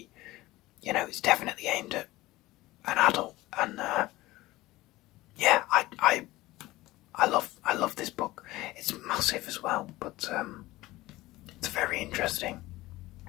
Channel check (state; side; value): quieter; right; 18.3 dB